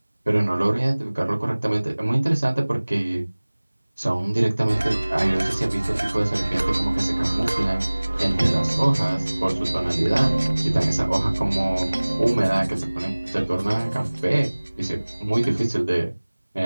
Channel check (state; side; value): inverted; both; correlation -1.00